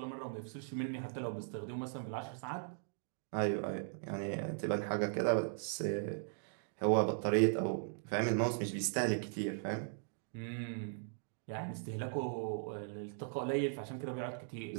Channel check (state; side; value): silent; left; digital silence